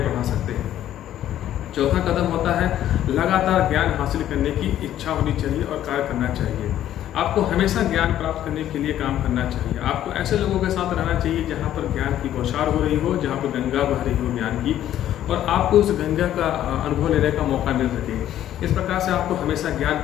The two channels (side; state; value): right; quieter; 11.9 dB